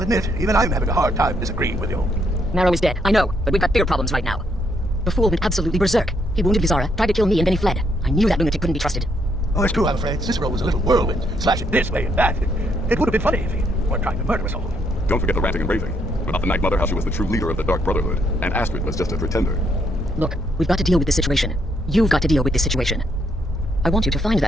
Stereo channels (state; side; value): normal; both; correlation 0.73